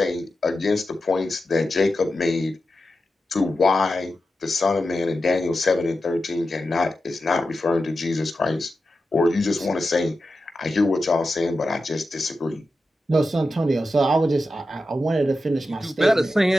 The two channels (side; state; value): both; normal; correlation 0.91